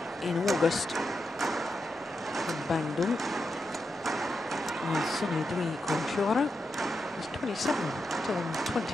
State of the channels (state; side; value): normal; both; correlation 0.86